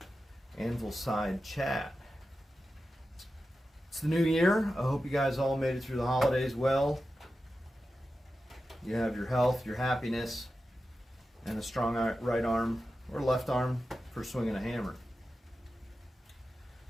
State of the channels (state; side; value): normal; both; correlation 0.92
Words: Anvil Side chat. It's the new year. I hope you guys all made it through the holidays well. You have your health, your happiness, and a strong right arm or left arm for swinging a hammer.